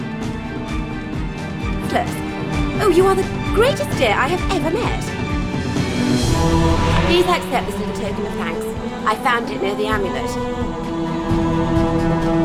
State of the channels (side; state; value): both; identical; correlation 1.00